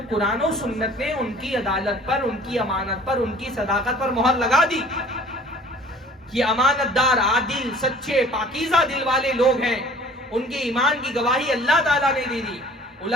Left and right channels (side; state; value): both; normal; correlation 0.49